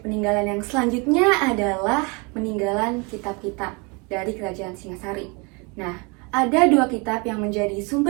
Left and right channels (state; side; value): quieter; left; 30.2 dB